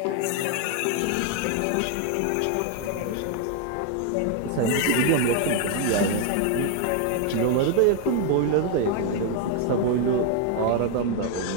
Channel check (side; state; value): both; different; correlation 0.01